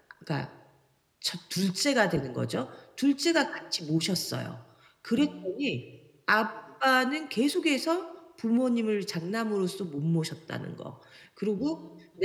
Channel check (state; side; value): identical; both; correlation 1.00